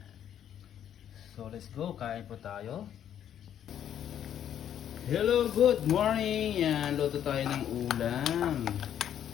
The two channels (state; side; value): quieter; right; 10.0 dB